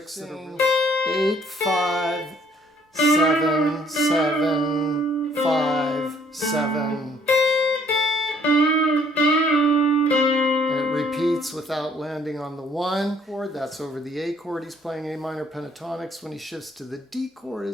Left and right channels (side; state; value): both; normal; correlation 0.62